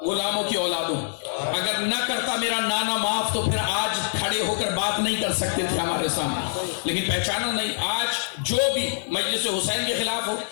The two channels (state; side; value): silent; right; digital silence